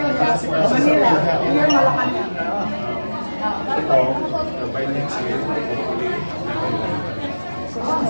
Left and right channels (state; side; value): inverted; both; correlation -1.00